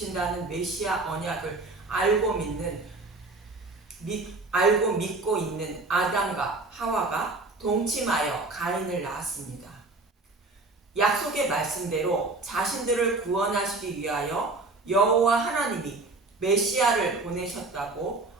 메시아 언약을 알고 믿고 있는 아담과 하와가 동침하여 가인을 낳았습니다. 약속의 말씀대로 자신들을 구원하시기 위하여 여호와 하나님이 메시아를 보내셨다고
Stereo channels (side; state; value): left; quieter; 3.3 dB